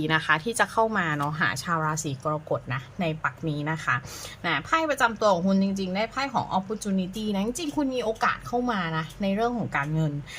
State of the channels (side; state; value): both; identical; correlation 1.00